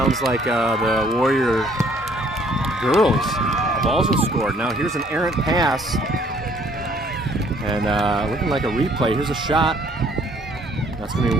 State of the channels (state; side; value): normal; both; correlation 0.61